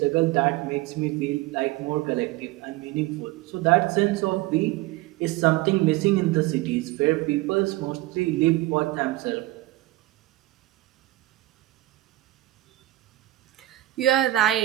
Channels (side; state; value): left; quieter; 17.5 dB